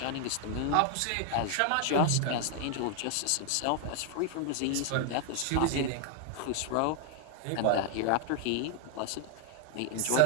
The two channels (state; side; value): different; both; correlation 0.00